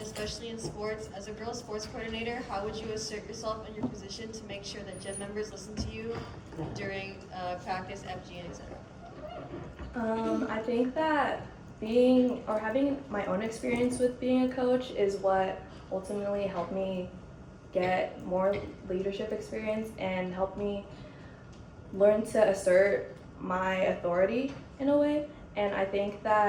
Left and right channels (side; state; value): both; identical; correlation 1.00